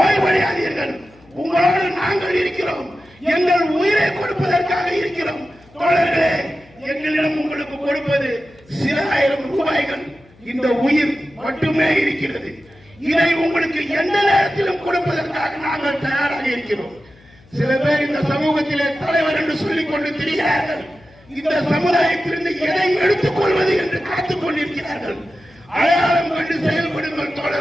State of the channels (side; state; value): left; noise; hum, 27 dB below the sound